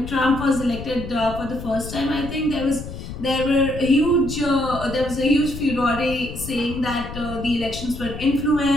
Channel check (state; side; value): noise; left; rumble, 10 dB below the sound